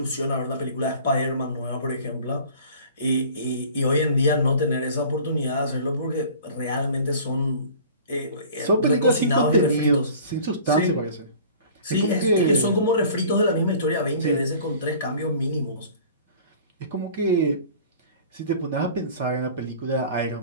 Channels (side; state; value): both; inverted; correlation -0.46